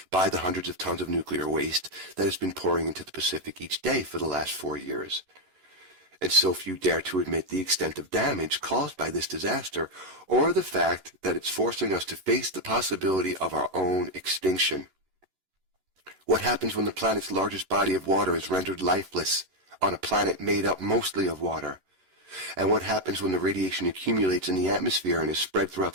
by the hundreds of tons of nuclear waste that has been pouring into the Pacific each day for the last 4 years. And so few dare to admit the extent of damage caused by this disaster, or the fact that it's forcing us to face the possibility of our own extinction. What happens when the planet's largest body of water is rendered lifeless on a planet made up mostly of water? And what happens when the radiation accumulates in the atmosphere and is spread throughout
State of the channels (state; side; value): late; left; 11 ms